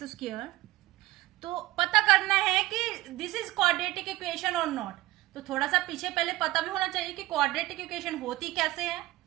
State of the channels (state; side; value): quieter; left; 17.9 dB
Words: square. तो पता करना है कि दिस इज क्वाड्रेटिक इक्वेशन और नॉट. तो थोड़ा सा पीछे पहले पता भी होना चाहिए कि क्वाड्रेटिक इक्वेशन होती कैसे है.